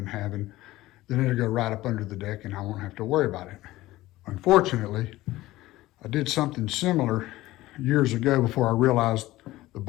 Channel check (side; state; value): right; quieter; 17.1 dB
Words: having, then it'll go right up under the deck and I won't have to worry about it. Unfortunately, I did something similar years ago before I realized the